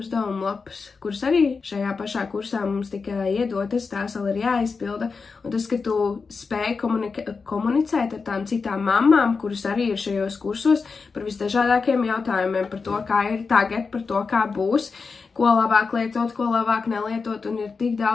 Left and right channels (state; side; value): quieter; right; 4.8 dB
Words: lapas, kuras arī šajā pašā kursā mums tika iedotas, tās vēl ir jāizpilda, un tas, ka tu spēj komunicēt ar tām citām mammām, kuras arī ir šajos kursos, par visdažādākiem jautājumiem, par to, kā ir tagad, par to, kā būs, ko labāk lietot, ko labāk nelietot, un ir tik